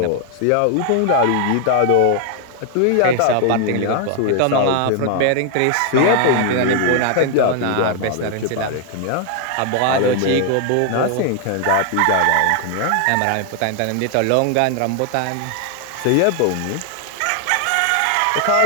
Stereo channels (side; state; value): both; different; correlation 0.00